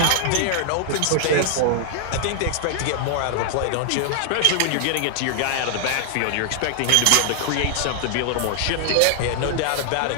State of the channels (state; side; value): different; both; correlation 0.00